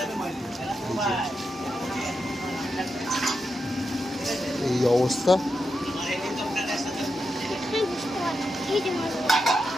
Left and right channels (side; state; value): both; normal; correlation 0.86